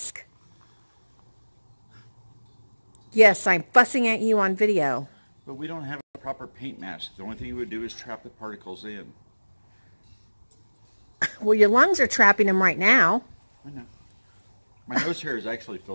Yes, I'm fussing at you on video. But we don't have a proper paint mask. The only thing you would do is trap the particles in. Well, your lungs are trapping them right now. I know. My nose hair is actually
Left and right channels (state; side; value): inverted; both; correlation -1.00